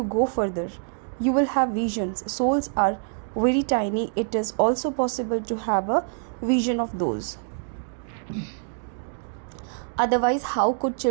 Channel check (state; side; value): silent; left; 61 dB below the other